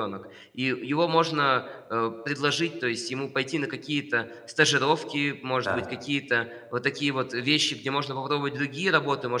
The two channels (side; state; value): both; identical; correlation 1.00